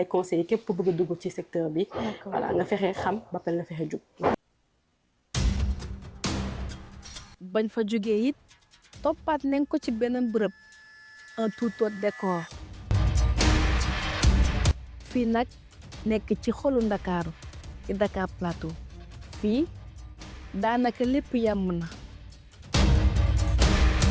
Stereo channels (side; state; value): both; identical; correlation 1.00